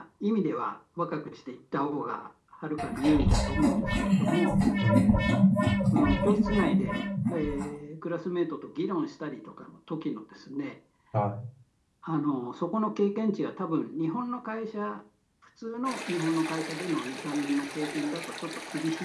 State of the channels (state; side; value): identical; both; correlation 1.00